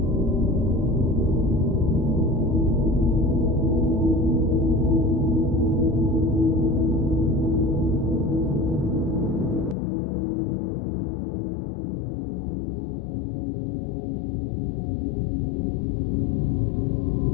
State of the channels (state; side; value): drops out; right; at 9.8 s